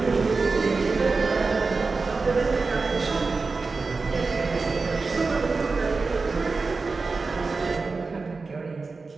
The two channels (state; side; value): quieter; left; 4.1 dB